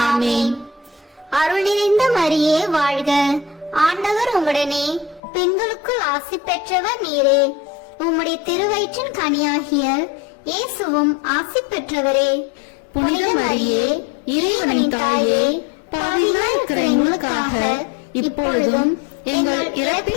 ஆமென். அருள் நிறைந்த மரியே வாழ்க. ஆண்டவர் உம்முடனே, பெண்களுக்குள் ஆசி பெற்றவர் நீரே. உம்முடைய திருவயிற்றின் கனியாகிய இயேசுவும் ஆசி பெற்றவரே. புனித மரியே, இறைவனின் தாயே, பாவிகளாய் இருக்கிற எங்களுக்காக இப்பொழுதும் எங்கள்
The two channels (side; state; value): right; drops out; at 5.2 s